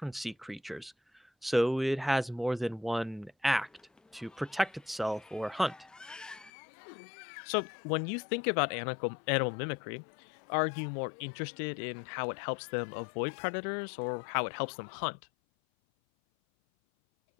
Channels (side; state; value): right; drops out; at 6.5 s